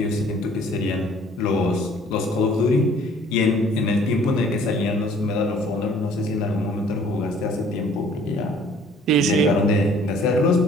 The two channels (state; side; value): normal; both; correlation 0.55